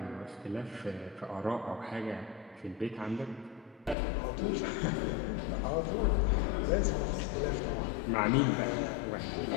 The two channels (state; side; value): drops out; right; at 4.0 s